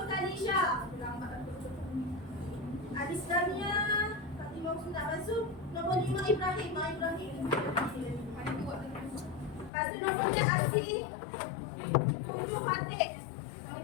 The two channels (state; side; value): drops out; right; at 9.7 s